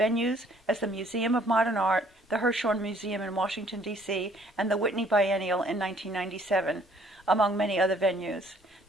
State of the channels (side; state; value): both; normal; correlation 0.61